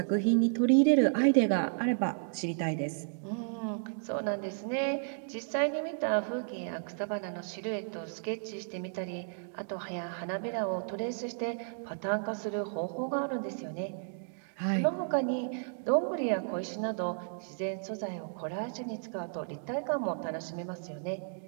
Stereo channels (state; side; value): silent; left; digital silence